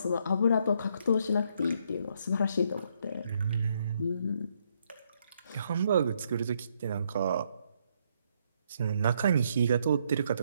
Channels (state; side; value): inverted; both; correlation -0.73